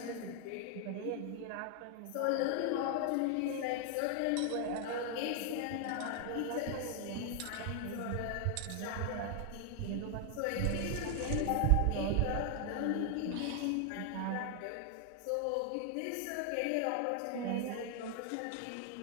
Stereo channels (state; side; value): different; both; correlation 0.00